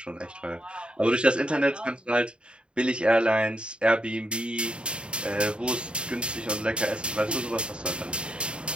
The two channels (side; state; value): left; late; 0.054 ms